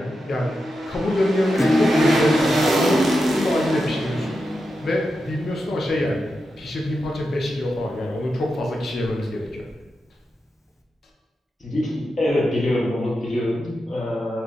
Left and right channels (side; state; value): both; normal; correlation 0.88